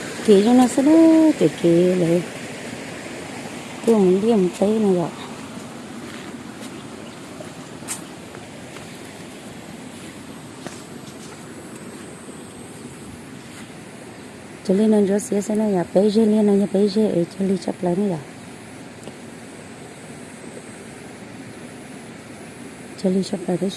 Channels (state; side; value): identical; both; correlation 1.00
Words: kỹ cho nó sẽ đó kỹ lại tôi muốn đi một tí này rồi cho nên nó rất sẽ nó là bây giờ liên nó bây giờ ở cho đi chấp lấy này rồi cho đi chấp lấy cái